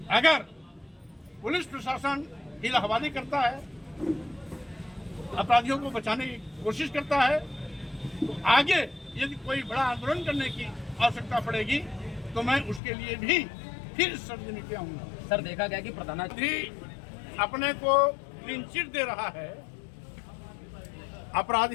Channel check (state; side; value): drops out; right; at 12.8 s